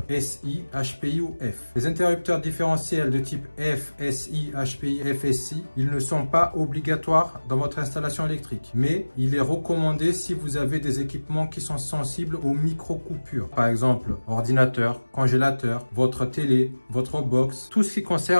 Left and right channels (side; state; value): both; inverted; correlation -1.00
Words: SI, HPI ou F. Les interrupteurs différentiels de type F, SI, HPI, FSI, ils ne sont pas obligatoires dans votre installation électrique. Mais il est recommandé si vous avez des équipements qui sont sensibles aux micro-coupures. Par exemple, ordinateur, congélateur, votre télé, votre box, tout ce qui